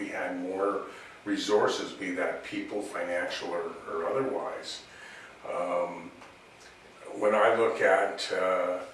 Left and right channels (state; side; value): identical; both; correlation 1.00